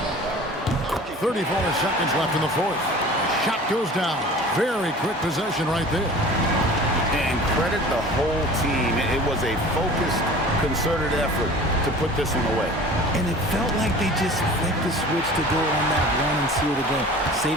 34 seconds left in the fourth. Shot goes down. Very quick possession right there. And credit the whole team. It was a focused, concerted effort to put this one away. And it felt like they just flipped the switch to go on that run and seal the game.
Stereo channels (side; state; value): both; normal; correlation 0.42